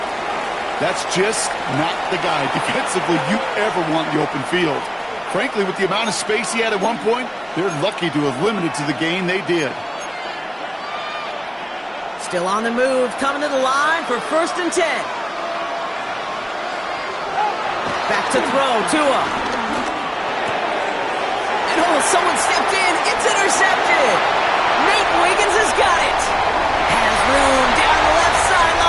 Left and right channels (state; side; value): identical; both; correlation 1.00